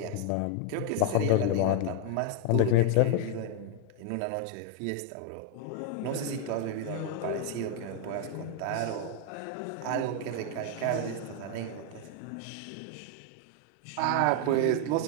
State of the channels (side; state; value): both; different; correlation 0.00